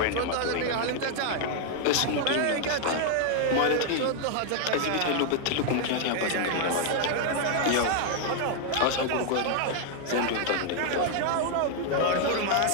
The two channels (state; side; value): different; both; correlation 0.00